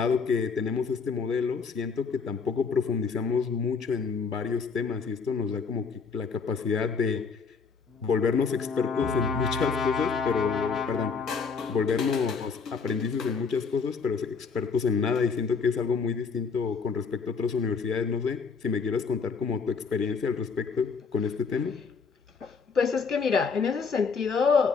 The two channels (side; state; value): right; quieter; 5.3 dB